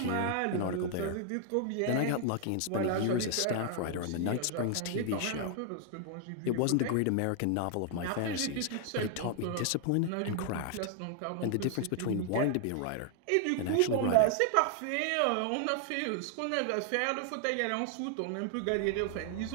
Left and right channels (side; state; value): both; different; correlation 0.00